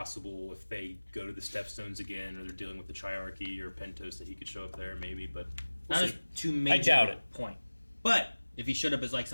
if they go to the Stepstones again or they're dealing with the Triarchy or Pentos that he could show up there maybe. But we'll not see. as too major I doubt it. point. But if he showed up as like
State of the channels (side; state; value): both; inverted; correlation -1.00